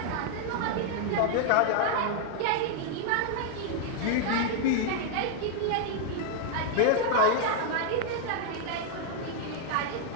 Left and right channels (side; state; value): both; different; correlation 0.00